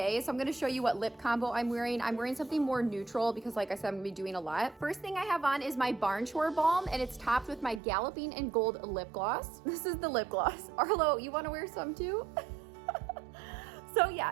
so I'm gonna show you what lip combo I'm wearing. I'm wearing something more neutral because like I said, I'm gonna be doing a lot. First thing I have on is my Barn Chore Balm, and it's topped with my Galloping in Gold lip gloss. This is the lip gloss. Arlo, you wanna wear some too? So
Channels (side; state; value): left; drops out; at 7.8 s